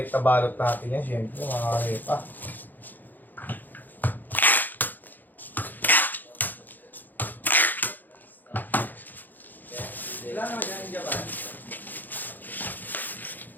balot natin yan, syempre, mga repa. Ilan naman dyan yung Japan?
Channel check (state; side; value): late; right; 0.086 ms